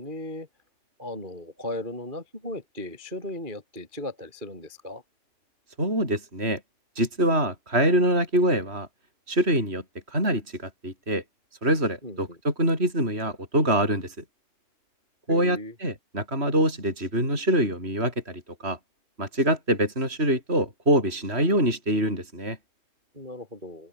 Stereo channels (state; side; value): late; left; 3.1 ms